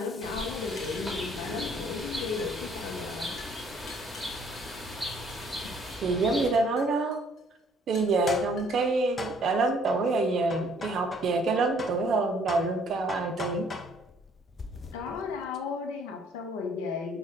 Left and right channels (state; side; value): normal; both; correlation 0.61